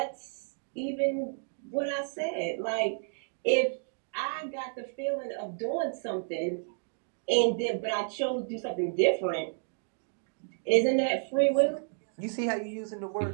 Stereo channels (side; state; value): left; silent; digital silence